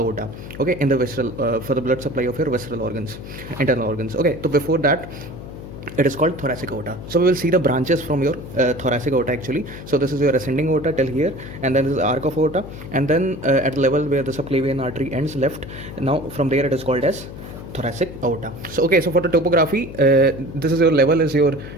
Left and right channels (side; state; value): left; noise; hum, 12 dB below the sound